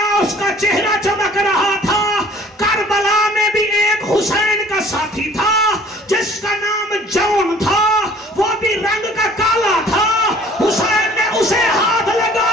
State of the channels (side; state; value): both; normal; correlation 0.52